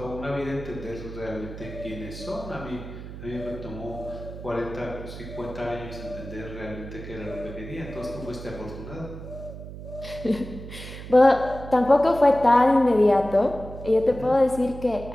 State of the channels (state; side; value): noise; right; hum, 12 dB below the sound